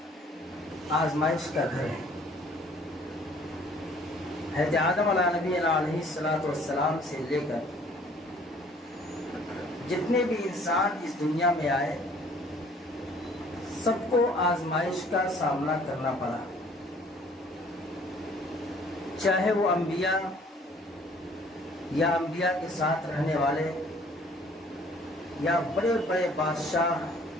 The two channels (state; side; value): normal; both; correlation 0.56